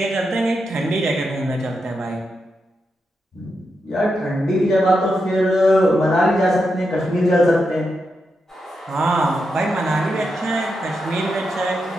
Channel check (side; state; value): both; normal; correlation 0.86